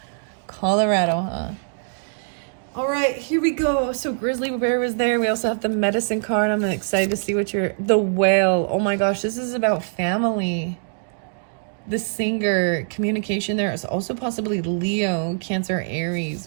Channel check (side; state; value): left; silent; digital silence